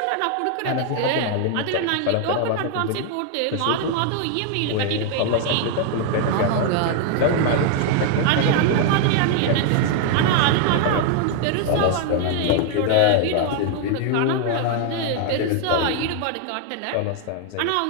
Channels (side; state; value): both; different; correlation 0.00